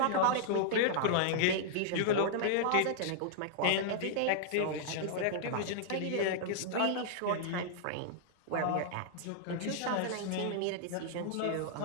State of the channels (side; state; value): both; different; correlation -0.01